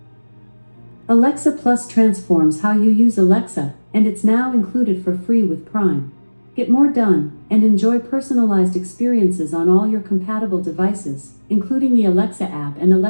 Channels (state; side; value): inverted; both; correlation -1.00